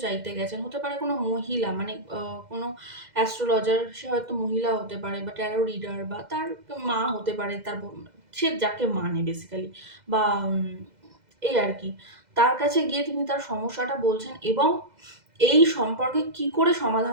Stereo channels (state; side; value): late; left; 2.0 ms